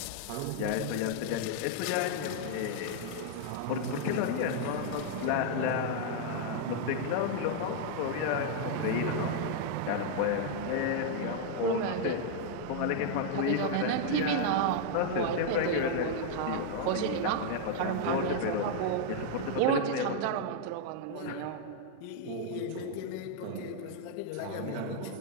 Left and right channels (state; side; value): different; both; correlation -0.01